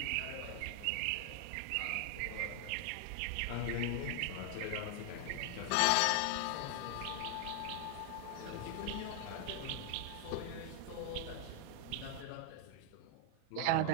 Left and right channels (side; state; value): both; different; correlation 0.00